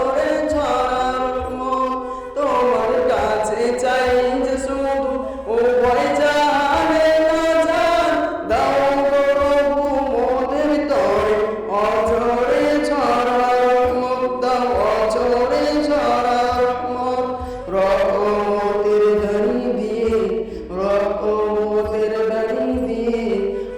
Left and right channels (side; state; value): both; identical; correlation 1.00